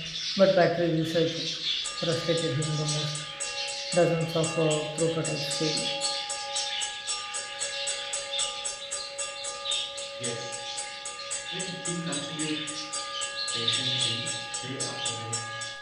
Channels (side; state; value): both; identical; correlation 1.00